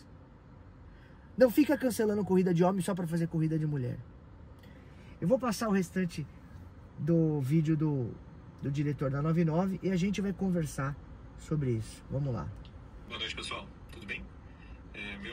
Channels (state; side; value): identical; both; correlation 1.00